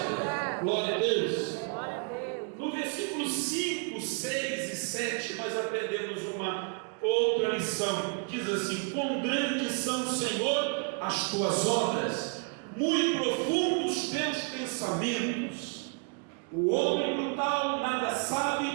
Glória a Deus. No versículo 5, 6 e 7, nós aprendemos uma outra lição. Diz assim: quão grandes são, Senhor, as tuas obras, muito profundos teus pensamentos. O homem brutal nada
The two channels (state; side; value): quieter; left; 37.3 dB